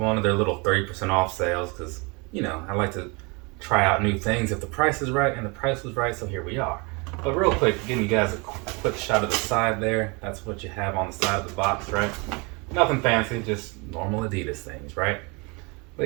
of their little 30% off sales because, I like to try out new things if the price is right, and the price was right, so here we are. But real quick, giving you guys a quick shot of the side there. That's what you have on the side of the box, right? Nothing fancy, just normal Adidas things, right?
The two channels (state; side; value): quieter; left; 29.3 dB